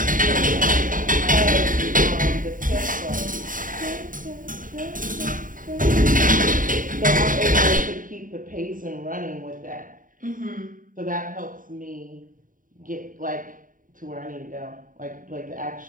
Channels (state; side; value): late; left; 0.39 ms